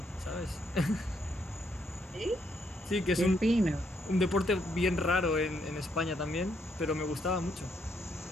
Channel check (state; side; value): normal; both; correlation 0.74